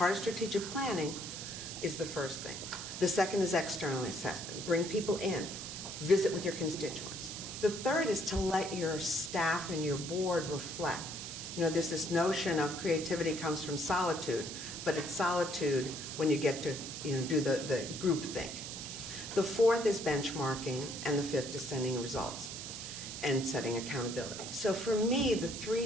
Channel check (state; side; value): noise; right; hiss, 8 dB below the sound